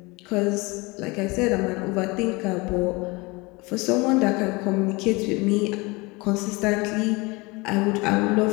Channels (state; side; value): quieter; right; 25.0 dB